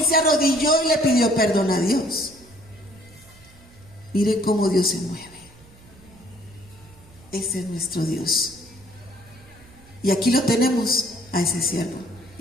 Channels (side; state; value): right; noise; hum, 25 dB below the sound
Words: se arrodilló y le pidió perdón a Dios. Mire cómo Dios se mueve. Ese es nuestro Dios. Y aquí lo tenemos a ese siervo